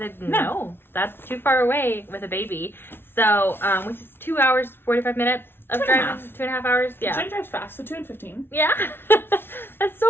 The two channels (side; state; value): right; late; 0.11 ms